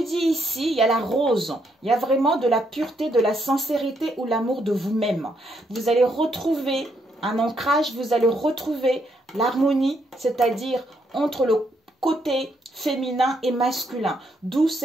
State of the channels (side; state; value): both; normal; correlation 0.75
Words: dit ici, il y a la rose. Il y a vraiment de la pureté, de la sincérité ou l'amour de vous-même. Vous allez retrouver un ancrage, vous allez retrouver l'harmonie, c'est-à-dire entre le côté féminin et masculin. D'où